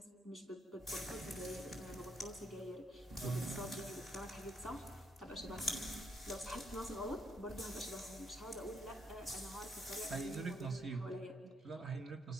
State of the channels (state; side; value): normal; both; correlation 0.74